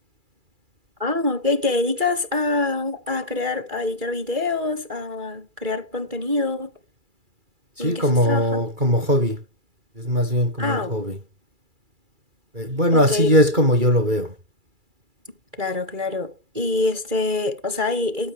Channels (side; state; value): left; late; 2.3 ms